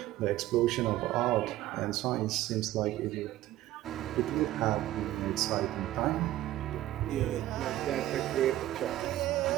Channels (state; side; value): quieter; left; 14.7 dB